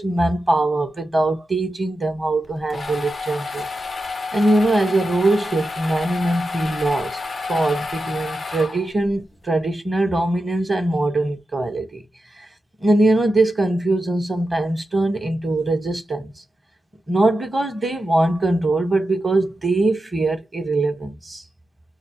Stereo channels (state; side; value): normal; both; correlation 0.90